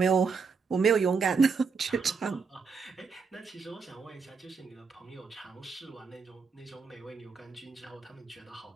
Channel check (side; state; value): left; quieter; 5.2 dB